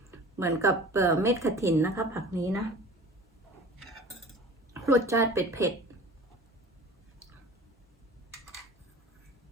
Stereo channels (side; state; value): both; normal; correlation 0.41